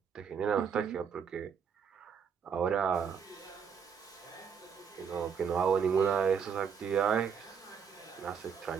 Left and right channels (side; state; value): left; quieter; 6.8 dB